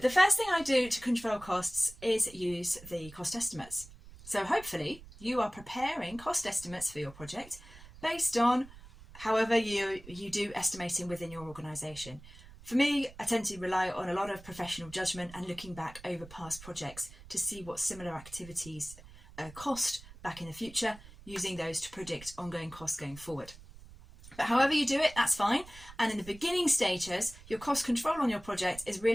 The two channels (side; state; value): right; noise; rumble, 19 dB below the sound